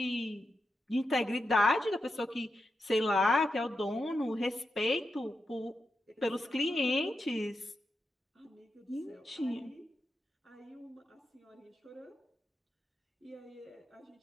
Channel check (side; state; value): both; normal; correlation 0.87